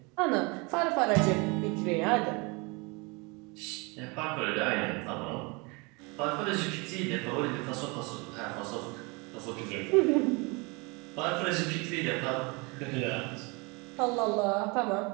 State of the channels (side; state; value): left; quieter; 28.5 dB